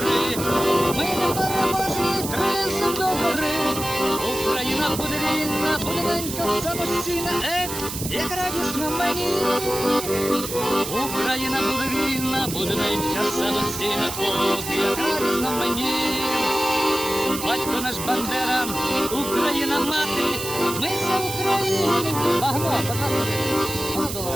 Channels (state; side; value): noise; right; hiss, 7 dB below the sound